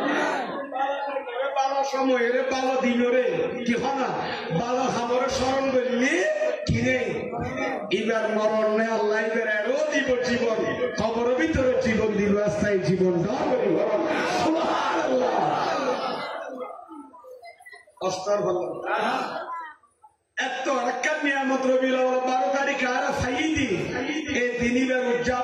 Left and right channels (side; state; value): both; identical; correlation 1.00